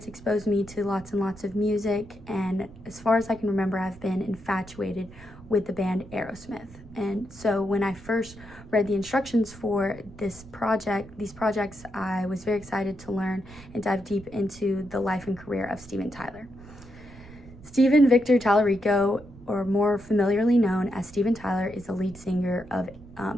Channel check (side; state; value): right; noise; rumble, 19 dB below the sound